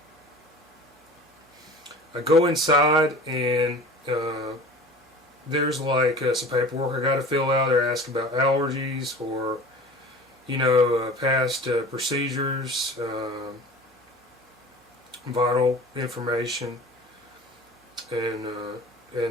I go inside and there's like some paperwork I got to fill out. They're asking about allergies or past procedures, vital information, and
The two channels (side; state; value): both; normal; correlation 0.40